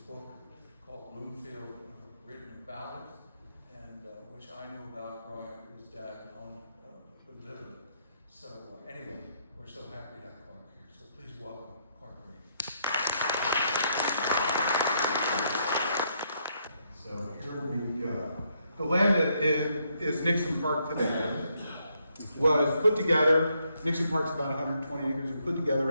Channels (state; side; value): inverted; both; correlation -0.75